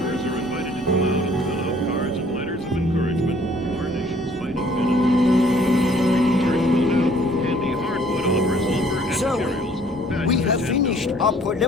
We have finished our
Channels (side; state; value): both; normal; correlation 0.58